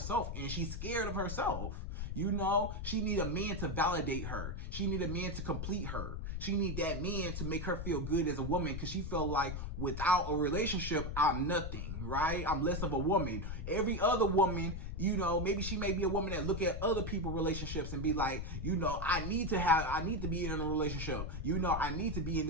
and she's scared of herself. She need a man to validate her. She need a man to complete her. She need that man to make her feel good as a woman, because she feel like without a relationship, I'm nothing, right? I'm less of a woman. Every other woman, maybe she may be a woman that look at other people's relationships and be like, I need to be in a relationship. I need to be in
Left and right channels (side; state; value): left; noise; rumble, 5 dB below the sound